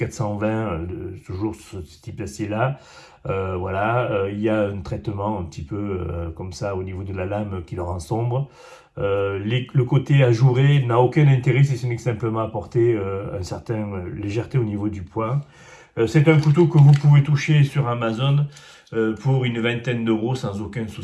toujours ce type d'acier-là. Voilà, il y a un traitement un petit peu comme ça au niveau de la lame qui le rend sombre. Le côté ajouré n'a aucun intérêt si ce n'est que simplement apporter une certaine légèreté au niveau du poing. C'est un couteau que vous pouvez toucher sur Amazon pour une vingtaine d'euros sans aucun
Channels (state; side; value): identical; both; correlation 1.00